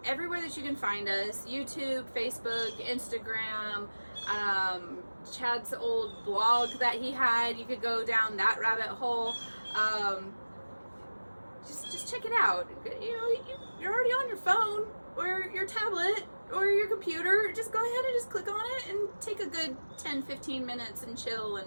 everywhere that you can find us: YouTube, Facebook, Instagram, Chad's old blog that he had. You could go down that rabbit hole. Just check it out. You're already on your phone or your tablet or your computer. Just go ahead and just click on it and take a good 10-15 minutes and chill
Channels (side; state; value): both; inverted; correlation -1.00